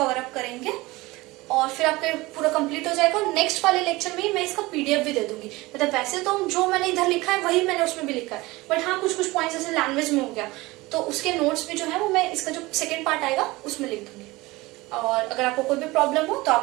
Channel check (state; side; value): quieter; left; 21.0 dB